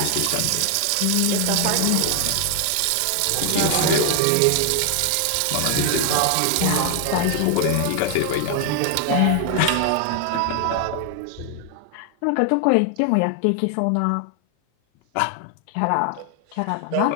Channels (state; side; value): different; both; correlation 0.00